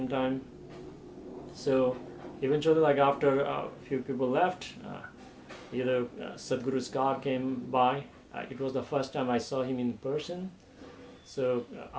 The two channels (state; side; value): identical; both; correlation 1.00